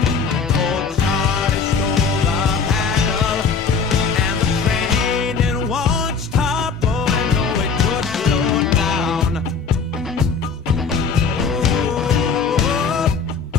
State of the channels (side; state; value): right; quieter; 5.3 dB